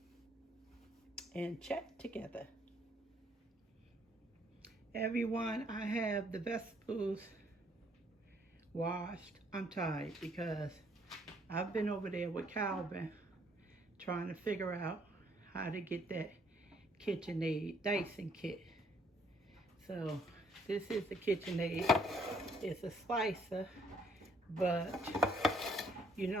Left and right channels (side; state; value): both; normal; correlation 0.66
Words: and chat together. Everyone, I have the vegetables washed. I'm tired because I've been over there with Calvin trying to figure out how to get that KitchenAid dicing kit. So this is the KitchenAid. It's a slicer, but you